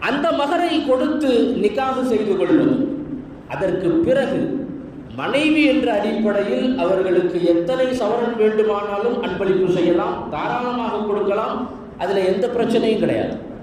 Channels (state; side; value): identical; both; correlation 1.00